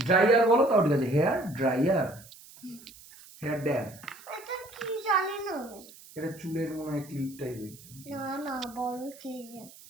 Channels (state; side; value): noise; right; hiss, 21 dB below the sound